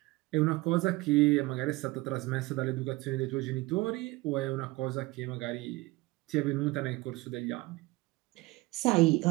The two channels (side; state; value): left; quieter; 21.3 dB